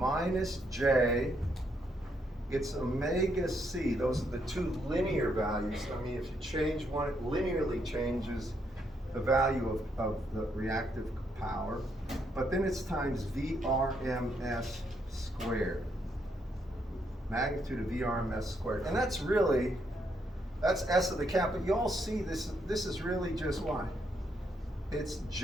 J. It's omega C. Those are the two linear values. I mean, if you change one, it linearly changes the value of the reactive power. But then it's times VRMS squared. Magnitude of VRMS squared. And that's really, that's S of the cap. But you all see this is really just what? It's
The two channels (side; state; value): both; normal; correlation 0.76